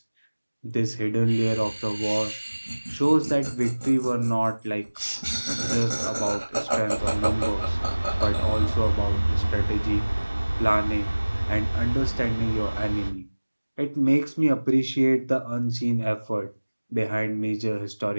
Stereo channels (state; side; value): inverted; both; correlation -1.00